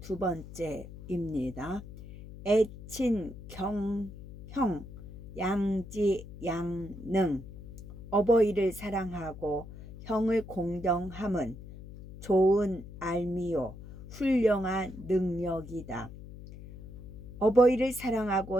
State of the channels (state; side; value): noise; left; hum, 14 dB below the sound